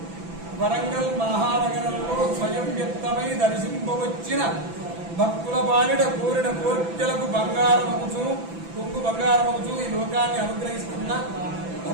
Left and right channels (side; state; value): left; late; 6.0 ms